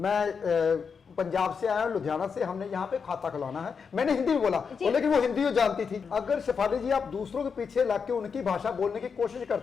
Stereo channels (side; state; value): right; quieter; 5.9 dB